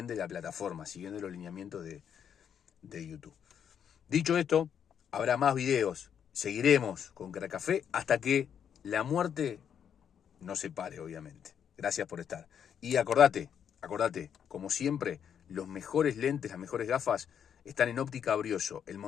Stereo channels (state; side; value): quieter; right; 8.3 dB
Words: de la plataforma, siguiendo los lineamientos de YouTube. Dicho esto, habrá más videos, seguiremos con Crack Café hasta que la muerte nos separe, obviamente. Gracias por estar. Y acordate, como siempre, los mejores lentes, las mejores gafas están en Óptica Brioso, en